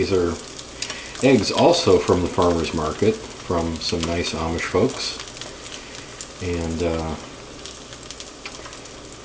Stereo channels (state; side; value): identical; both; correlation 1.00